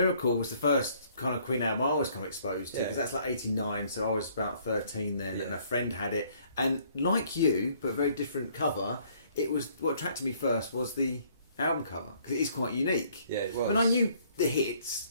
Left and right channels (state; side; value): inverted; both; correlation -0.62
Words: was the first kind of Queen album I was kind of exposed to, because that's like 89, so I was about 13 then, and a friend had it, and like you, but very different cover. It was, what attracted me first was the album cover, because it is quite unique. Yeah, it was. I mean, I knew the hits